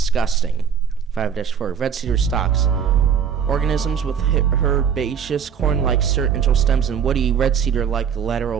5-4. Red cedar stalks. Organisms with herbaceous corn-like central stems and woody red cedar-like lateral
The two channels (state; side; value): quieter; left; 7.5 dB